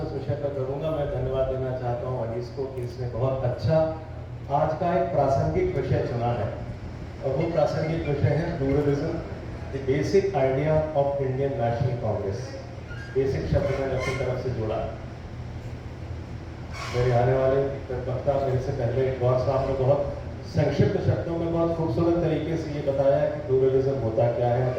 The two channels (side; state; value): both; identical; correlation 1.00